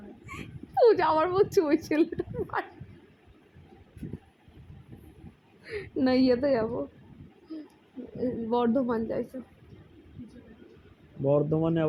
পূজা আমার বলছে ওই ছেলেটা না, ইয়েতে যাবো, বর্ধমান যাইছে। বর্ধমানে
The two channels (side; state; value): both; identical; correlation 1.00